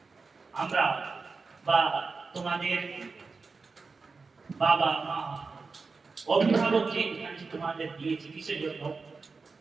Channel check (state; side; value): quieter; left; 4.4 dB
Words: আমরা বা তোমাদের বাবা মা অভিভাবক যে এখানে তোমাদের দিয়েছে কিসের জন্য?